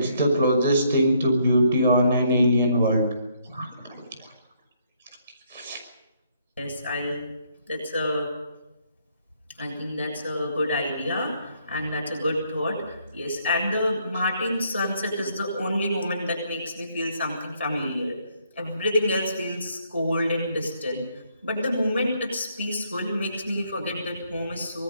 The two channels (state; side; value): inverted; both; correlation -0.70